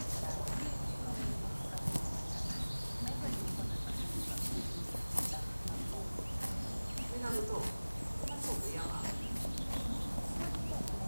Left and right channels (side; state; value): both; inverted; correlation -1.00